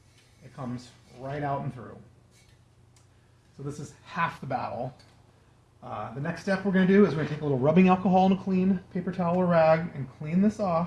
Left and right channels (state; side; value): identical; both; correlation 1.00